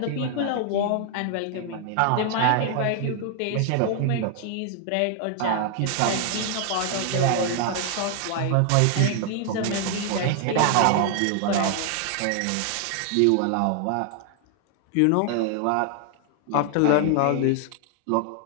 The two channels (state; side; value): different; both; correlation 0.00